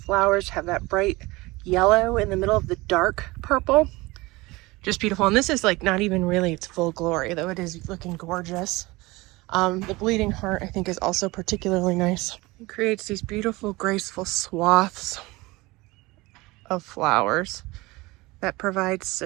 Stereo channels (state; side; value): quieter; left; 21.9 dB